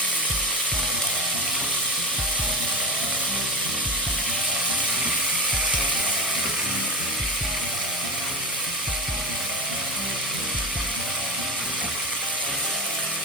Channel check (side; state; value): both; normal; correlation 0.22